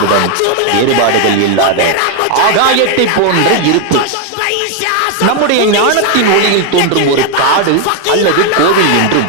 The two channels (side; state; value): both; different; correlation 0.01